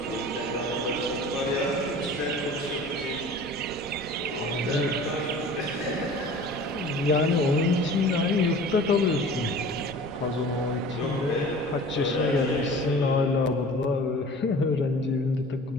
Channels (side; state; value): both; normal; correlation 0.42